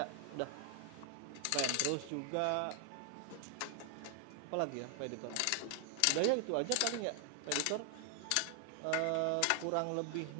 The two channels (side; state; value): both; different; correlation 0.00